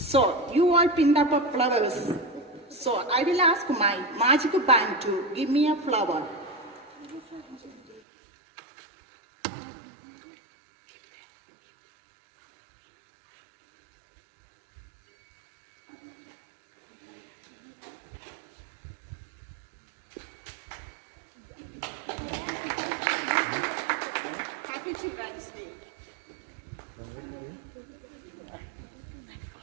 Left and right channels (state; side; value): drops out; left; at 8.0 s